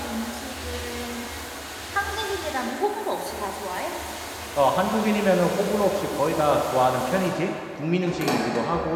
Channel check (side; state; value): both; identical; correlation 1.00